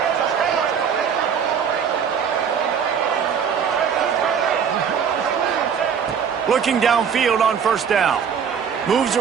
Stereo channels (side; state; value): left; quieter; 7.2 dB